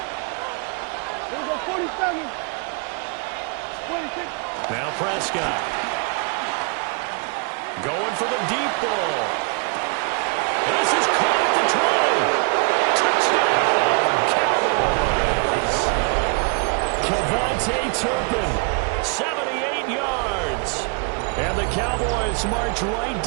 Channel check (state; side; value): quieter; left; 35.3 dB